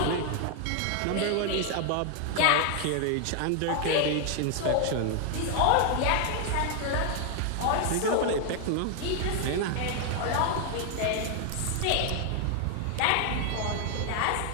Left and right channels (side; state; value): both; different; correlation 0.00